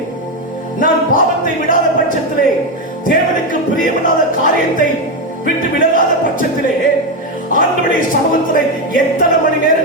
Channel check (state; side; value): normal; both; correlation 0.09